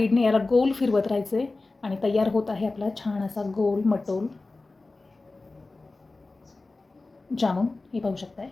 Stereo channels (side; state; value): right; quieter; 3.4 dB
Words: याला गोल फिरवत राहायचे आणि तयार होत आहे आपला छान असा गोल मटोल जामुन. हे पाहू शकताय.